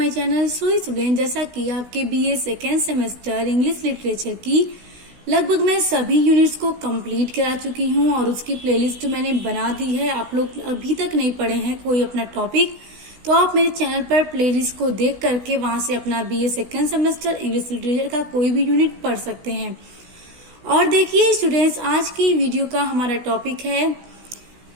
channel. So student, जैसा कि आपके BA second semester English literature की लगभग मैं सभी यूनिट्स को कंप्लीट करा चुकी हूं और उसकी प्लेलिस्ट मैंने बना दी है। आप लोग अभी तक नहीं पढ़े हैं कोई अपना टॉपिक, तो आप मेरे चैनल पर प्लेलिस्ट को देख करके वहां से अपना BA second semester English literature का कोई भी यूनिट पढ़ सकते हैं। और देखिए स्टूडेंट्स, आज की वीडियो का हमारा टॉपिक है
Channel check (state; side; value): late; left; 16 ms